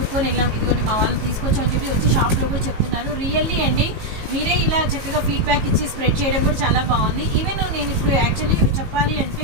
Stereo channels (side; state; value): left; late; 18 ms